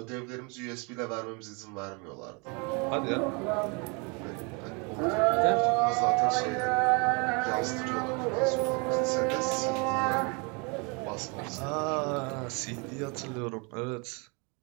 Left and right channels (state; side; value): quieter; left; 31.9 dB